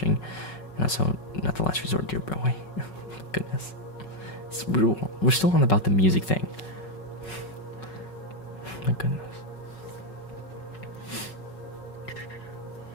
And also, not the last resort, dear boy. Goodness. We're still on about the music thing. My goodness.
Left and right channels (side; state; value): right; late; 5.4 ms